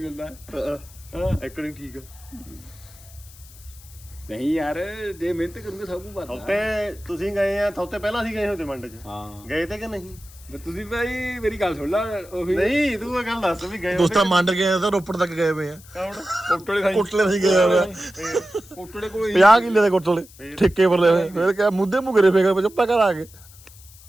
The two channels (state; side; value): noise; left; hiss, 22 dB below the sound